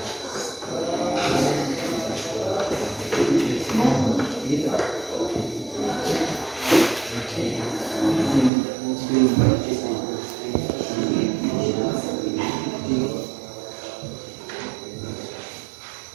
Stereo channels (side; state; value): left; drops out; at 8.5 s